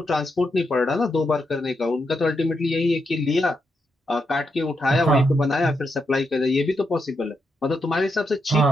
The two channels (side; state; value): both; normal; correlation 0.83